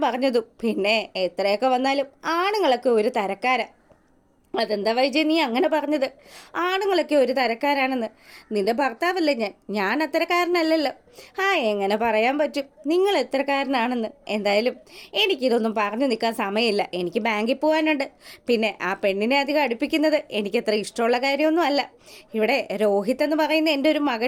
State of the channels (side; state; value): both; identical; correlation 1.00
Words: പറഞ്ഞതും, പിന്നെ എത്രയൊക്കെ വന്നാലും ആണുങ്ങളൊക്കെ ഒരു തരക്കാരാ. അതെന്താ വൈജയ് നീ അങ്ങനെ പറഞ്ഞത്? ആണുങ്ങളൊക്കെ ഒരു തരക്കാരാണെന്ന്. നിന്റെ ഭർത്താവല്ലേ ഞാൻ അത്തരക്കാരനല്ലല്ലോ. എങ്ങനെ പറയാൻ പറ്റും നിങ്ങൾ എത്രക്കാരനാണെന്ന്? എന്തായാലും എനിക്കിതൊന്നും പറഞ്ഞു നിൽക്കാൻ സമയമില്ല. എനിക്ക് ബാങ്കിൽ പോകാനുണ്ട്. പിന്നെ ആ പെണ്ണിനെ അധികം അടുപ്പിക്കുന്നത് എനിക്കത്ര ഇഷ്ടമുള്ള കാര്യമൊന്നും അല്ല. ഇവിടെ രോഹിത് എന്ന് പറയുന്ന എൻ്റെ ഒരു